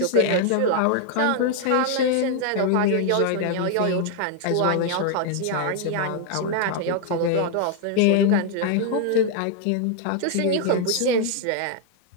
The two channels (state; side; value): different; both; correlation 0.00